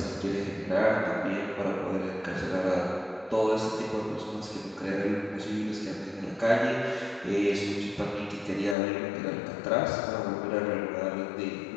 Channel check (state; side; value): drops out; right; at 8.8 s